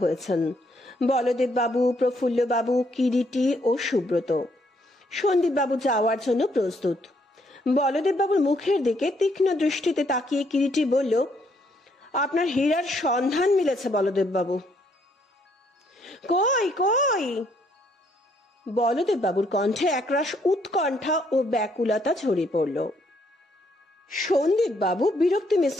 হয়েছেন। বলদেব বাবু, প্রফুল্ল বাবু, কিরিটি ও সুব্রত। সন্দীপ বাবু যাওয়ার জন্য প্রস্তুত। বলদেব বাবুর মুখের দিকে তীক্ষ্ণ দৃষ্টিতে তাকিয়ে কিরিটি বলল, আপনার হীরার সন্ধান মিলেছে বলদেব বাবু। কই কই? বলদেব বাবুর কণ্ঠে একরাশ উৎকণ্ঠা ও ব্যাকুলতা ঝরে পড়ল। সন্দীপ বাবু বিরক্তি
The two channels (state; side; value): normal; both; correlation 0.70